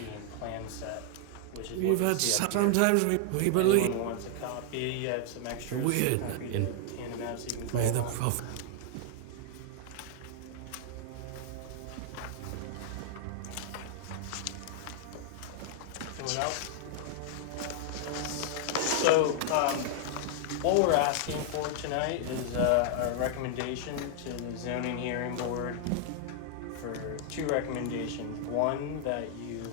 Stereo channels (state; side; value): different; both; correlation 0.00